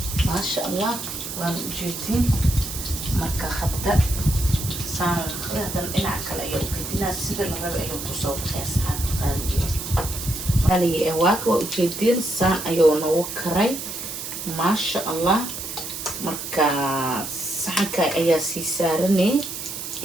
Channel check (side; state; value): right; noise; hiss, 7 dB below the sound